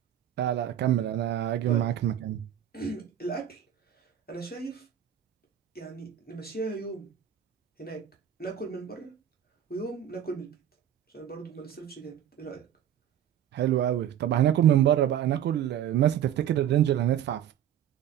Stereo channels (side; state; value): left; quieter; 10.5 dB